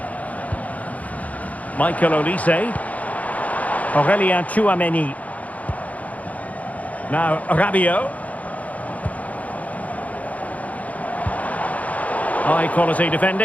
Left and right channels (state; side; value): late; right; 0.071 ms